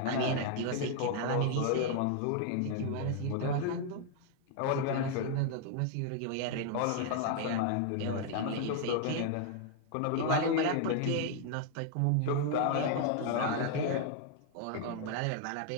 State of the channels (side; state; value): both; different; correlation 0.00